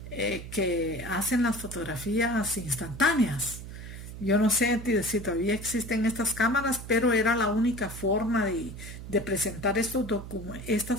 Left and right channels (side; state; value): right; noise; hum, 11 dB below the sound